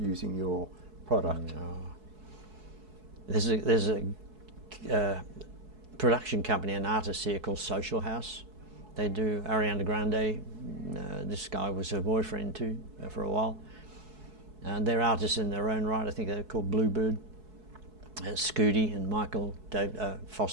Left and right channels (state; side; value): late; left; 4.7 ms